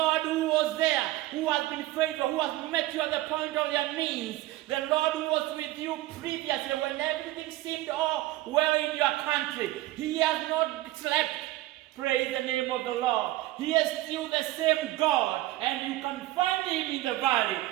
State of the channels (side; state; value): left; quieter; 16.8 dB